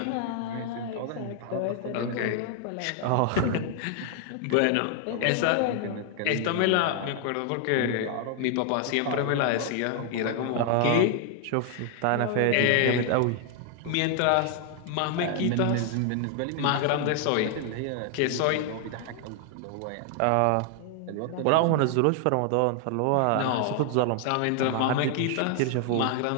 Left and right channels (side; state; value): both; different; correlation 0.00